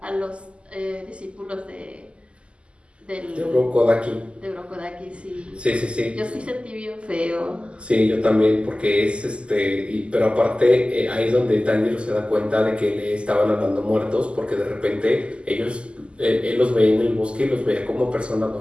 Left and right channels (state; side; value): late; left; 0.053 ms